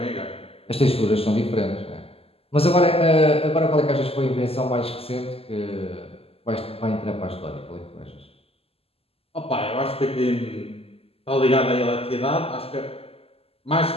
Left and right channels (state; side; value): late; right; 0.28 ms